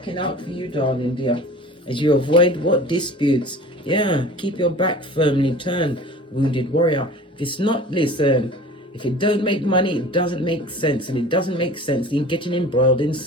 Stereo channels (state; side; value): normal; both; correlation 0.41